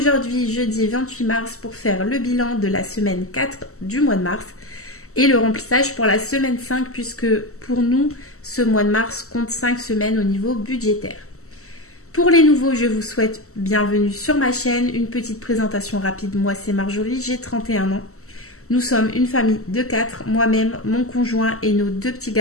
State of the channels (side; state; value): right; late; 0.64 ms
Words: jeudi 28 mars pour faire le bilan de la semaine 4 du mois de mars et le remplissage pour la semaine 5 puisque pour nous, ce mois de mars compte 5 semaines au niveau budgétaire. Pour les nouveaux, je vous souhaite bienvenue sur ma chaîne. Une petite présentation rapide. Moi, c'est Marjorie, j'ai 31 ans. Nous sommes une famille de 4, moi-même, mon conjoint et nos deux petits